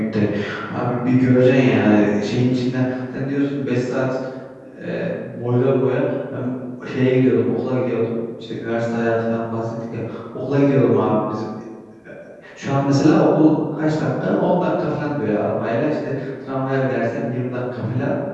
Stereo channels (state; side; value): identical; both; correlation 1.00